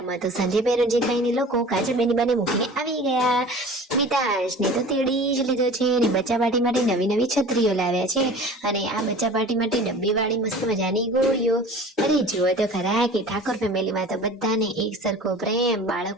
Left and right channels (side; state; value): both; normal; correlation 0.41